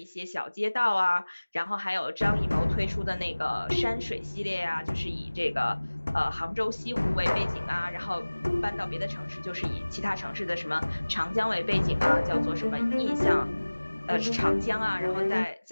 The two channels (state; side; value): inverted; both; correlation -1.00